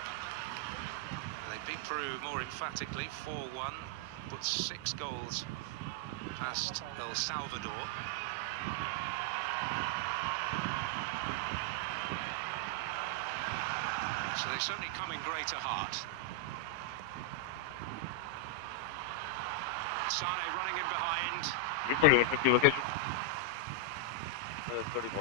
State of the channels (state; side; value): different; both; correlation 0.00